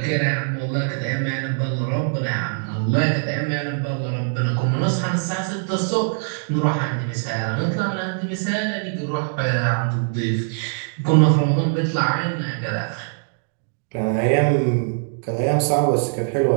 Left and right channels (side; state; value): left; silent; digital silence